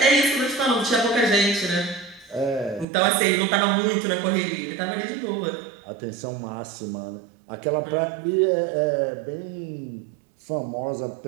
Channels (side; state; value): left; drops out; at 2.9 s